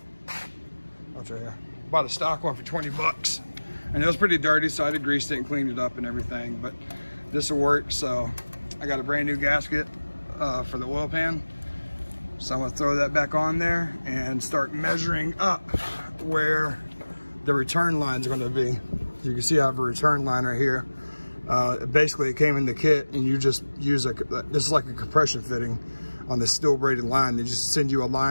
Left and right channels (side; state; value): both; inverted; correlation -1.00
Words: Oh, it's right here. Bought a stock one for 20 bucks. And it was pretty dirty, so I had greased it and cleaned it up and everything, but this will work. So I got a brand new gasket for the oil pan. So I'm gonna throw that back on there and start measuring up where the return lines are gonna be. You can see I have a return line right here. Basically it came in the kit, and you just use this is like a compression fitting on the steel braided line. They just send you a